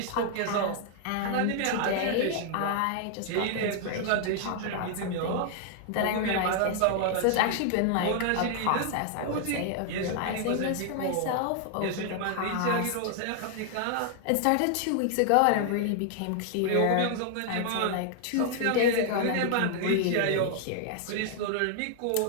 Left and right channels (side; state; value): both; different; correlation 0.00